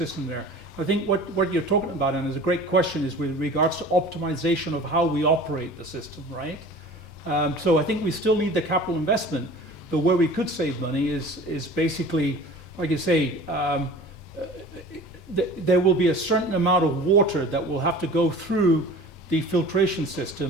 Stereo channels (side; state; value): both; normal; correlation 0.42